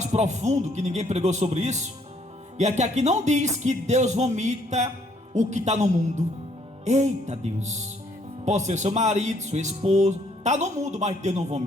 profundo, que ninguém pregou sobre isso, é que aqui não diz que Deus vomita o que está no mundo. Eita Deus, pode ser seu marido, sua esposa, está no mundo, mas Deus não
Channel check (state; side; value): normal; both; correlation 0.66